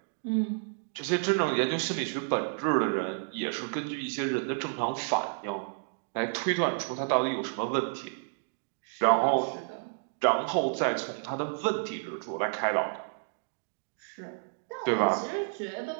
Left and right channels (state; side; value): silent; left; digital silence